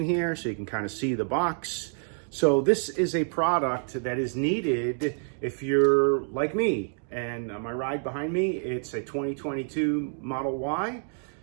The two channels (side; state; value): left; silent; 60 dB below the other